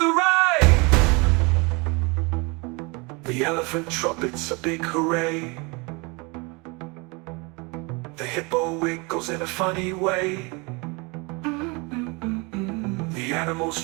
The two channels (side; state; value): left; quieter; 28.8 dB